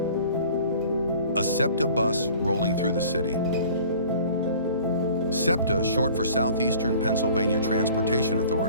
A SEPTA bus rolling through the city. SEPTA, short for Southeastern Pennsylvania Transportation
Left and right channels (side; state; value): both; inverted; correlation -0.48